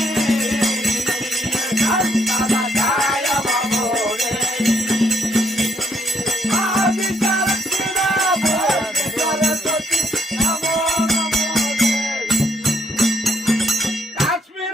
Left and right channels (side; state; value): both; normal; correlation 0.72